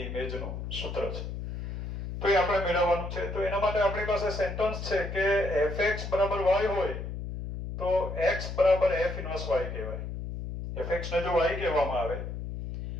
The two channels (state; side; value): noise; left; hum, 6 dB below the sound